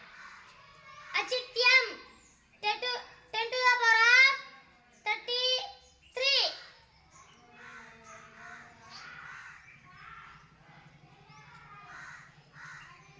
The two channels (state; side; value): identical; both; correlation 1.00